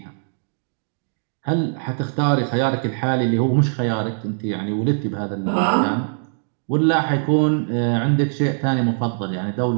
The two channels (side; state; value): left; silent; digital silence